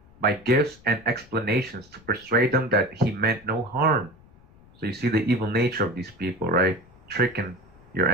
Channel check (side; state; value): left; noise; rumble, 26 dB below the sound